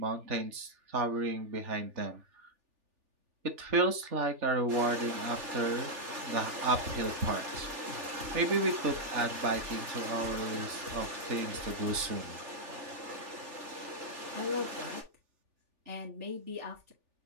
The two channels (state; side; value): late; left; 3.4 ms